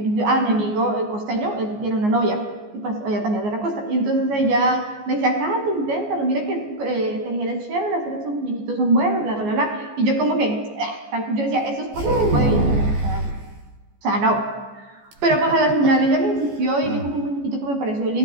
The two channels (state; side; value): late; left; 14 ms